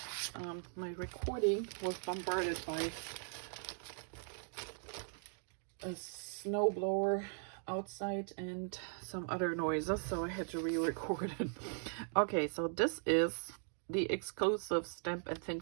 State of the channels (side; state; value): left; silent; 52 dB below the other